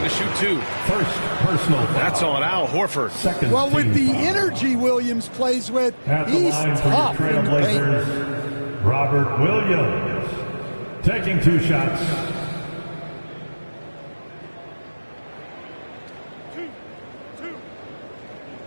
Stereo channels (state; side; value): inverted; both; correlation -1.00